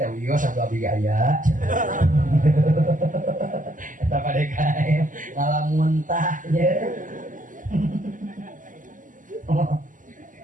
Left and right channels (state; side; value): late; left; 0.38 ms